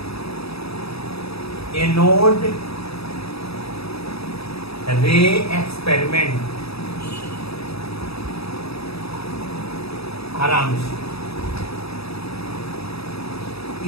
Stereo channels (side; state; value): right; late; 0.77 ms